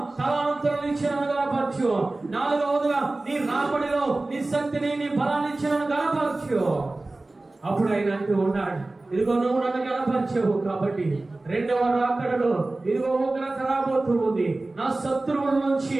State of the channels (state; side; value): quieter; left; 3.0 dB